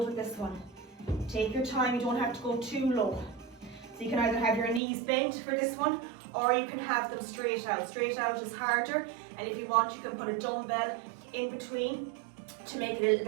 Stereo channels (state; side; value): drops out; left; at 4.8 s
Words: with this one. Take your time, you don't have to go too low. So you can either have your knees bent for this one, or you can have them straight out. Straight out is harder, and if you want, you can put a dumbbell in between to make it a little